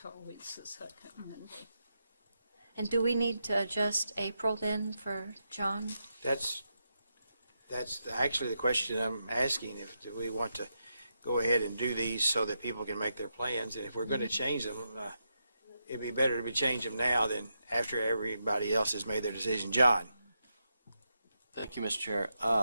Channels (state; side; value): inverted; both; correlation -0.84